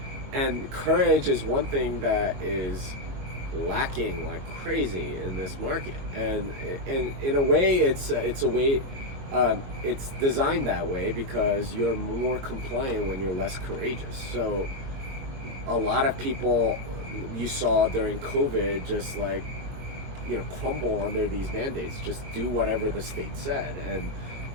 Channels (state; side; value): late; left; 22 ms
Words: and courage is one thing that is lacking like crazy in this market. And in a way, it's a way. It's designed that way because you're more compliant when you're less courageous. So a lot of people you saw during COVID just like, crumble under these mandates, just do whatever the state said. And